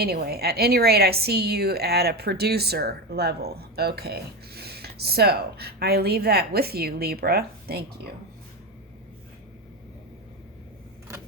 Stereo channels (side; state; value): both; normal; correlation 0.17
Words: at any rate, I see you at a producer level. Okay, so I leave that with you, Libra. Thank you.